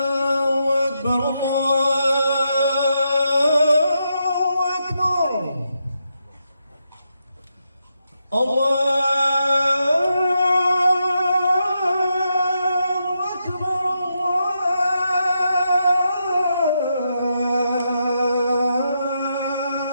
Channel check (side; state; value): both; inverted; correlation -0.83